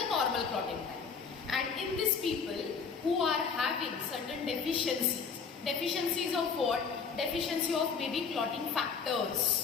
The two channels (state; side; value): quieter; right; 5.7 dB